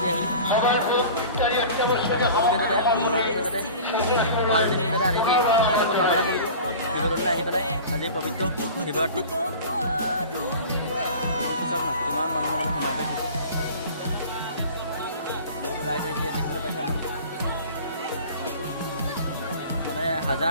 আহি সকলোকে যাতে ভাল দিন যাতে আনি কামনা কৰিলোঁ শিৱদৌললৈ আহি পেলাই আজি পবিত্ৰ শিৱৰাত্ৰি চাওক না কিমান মানুহৰ মানে সোমাই গৈছে ৰাইজ আহিছে দেখিবলৈ পাইছে মানে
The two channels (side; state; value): both; inverted; correlation -0.39